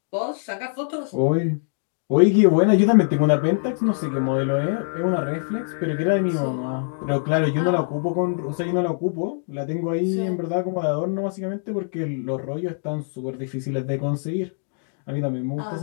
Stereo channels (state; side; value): silent; right; digital silence